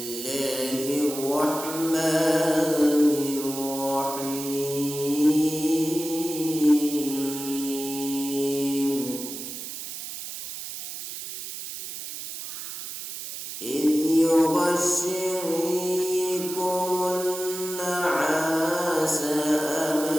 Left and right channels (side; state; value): right; noise; hiss, 8 dB below the sound